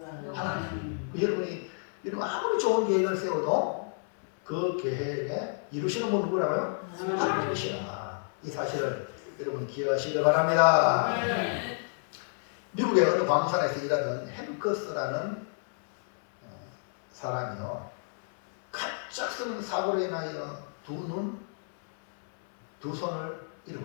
하나님. 여러분이 아무리 좋은 계획을 세워도 그 계획에 이루시는 분은 누구라고요? 하나님이시라. 이 사실을 여러분 기억하시길 바랍니다. 미국의 어느 광산에서 일하던 햄커스라는 사람이요, 갑작스러운 사고로 인하여 두 눈, 두 손을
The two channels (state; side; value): silent; right; 58 dB below the other